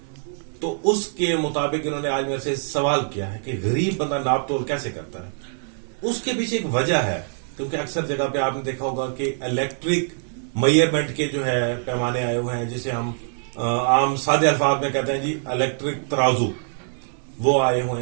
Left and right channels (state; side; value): silent; left; 63 dB below the other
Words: तो उसके मुताबिक इन्होंने आज मेरे से सवाल किया है कि गरीब बंदा नाप तोल कैसे करता है। उसके पीछे एक वजह है क्योंकि अक्सर जगह पे आपने देखा होगा कि इलेक्ट्रिक मेजरमेंट के जो है पैमाने आए हुए हैं जिसे हम आम सादे अल्फाज में कहते हैं जी इलेक्ट्रिक तराजू, वो आए हुए